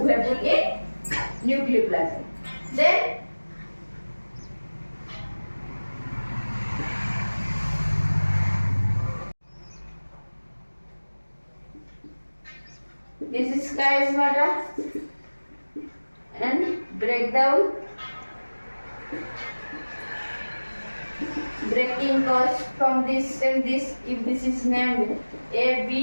Then this is chiasmata and breakdown. breaking occurs from this and this. If this is named A,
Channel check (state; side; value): inverted; both; correlation -1.00